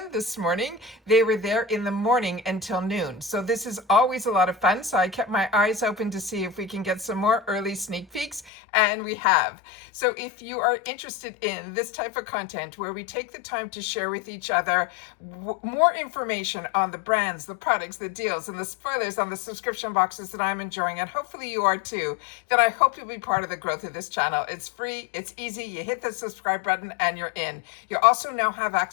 this morning, they were there in the morning until noon. So this is always a lot of fun. So I kept my eyes open to see if we can get some more early sneak peeks, and we have. So if you are interested in this type of content where we take the time to share with each other more information on the brands, the products, the deals, and the spoilers on the subscription boxes that I'm enjoying, and hopefully you are too, then I hope you'll be part of the growth of this channel. It's free, it's easy, you hit the subscribe button and you're in. You also now have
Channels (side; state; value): right; drops out; at 8.5 s